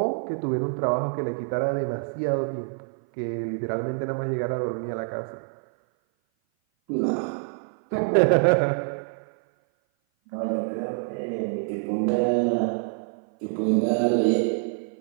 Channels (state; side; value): silent; left; 56 dB below the other